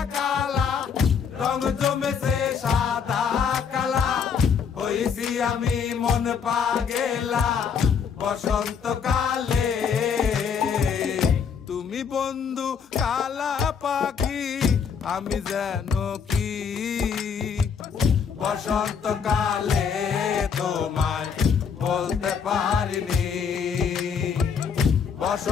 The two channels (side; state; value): right; quieter; 6.6 dB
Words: কালা রং জমেছে সাদা কালা। হইছি আমি মন পাগেলা বসন্তকালে। তুমি বন্ধু কালা পাখি, আমি যেন কি বসন্তকালে তোমায় বলতে পারিনি।